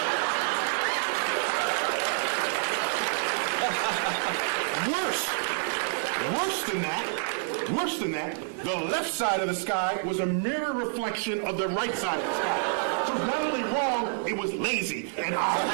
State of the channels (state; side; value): silent; left; digital silence